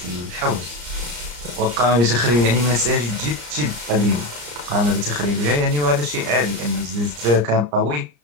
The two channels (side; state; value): left; late; 34 ms